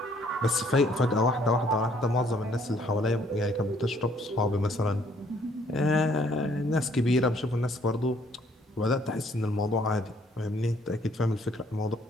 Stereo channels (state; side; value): normal; both; correlation 0.63